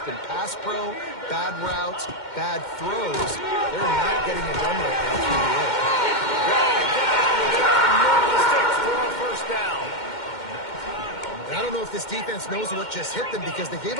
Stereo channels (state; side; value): late; right; 2.1 ms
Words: been pass pro, bad routes, bad throws, they're not getting it done right now through the air. Dragged down, and they'll move the sticks for a first down. And I don't know if this defense knows what just hit them, because they